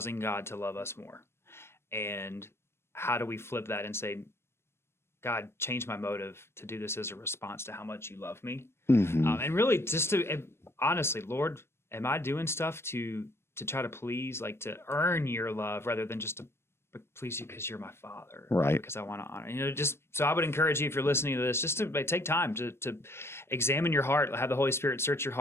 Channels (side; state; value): right; late; 0.12 ms